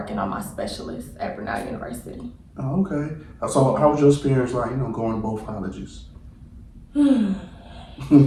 on my specialist at Brenau University. Oh, okay. So how was your experience like, you know, going to both colleges? Let's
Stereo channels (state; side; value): identical; both; correlation 1.00